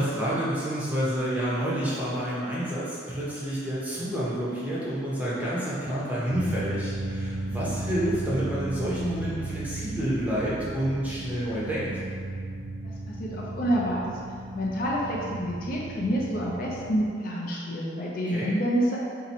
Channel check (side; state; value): both; normal; correlation 0.69